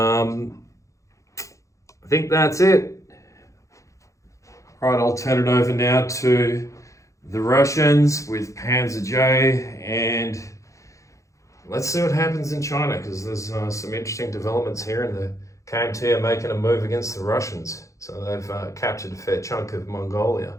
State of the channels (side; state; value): right; late; 0.15 ms